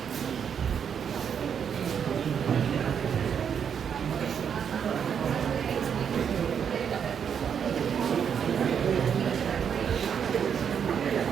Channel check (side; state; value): left; quieter; 7.6 dB